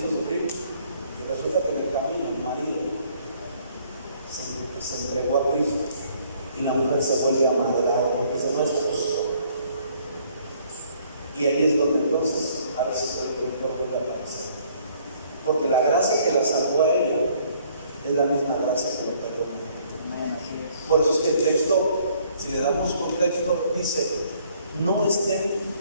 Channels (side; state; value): both; inverted; correlation -0.63